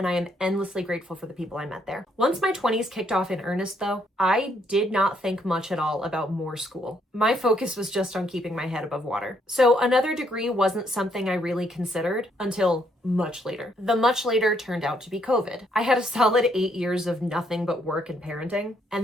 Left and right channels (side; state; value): both; normal; correlation 0.72